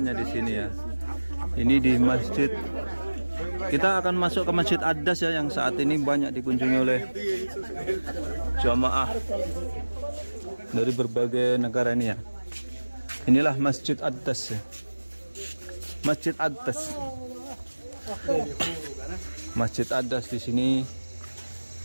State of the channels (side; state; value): both; inverted; correlation -1.00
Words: di sini ya. Ini di masjid. Kita akan masuk ke Masjid Adas ya, yang saat ini banyak dikunjungi oleh jamaah dari berbagai negara ini ya. Inilah Masjid Adas ya. Masjid Adas. Masjid Adas di sini